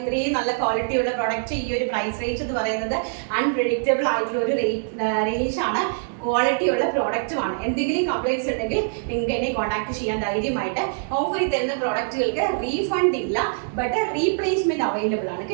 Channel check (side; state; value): left; silent; digital silence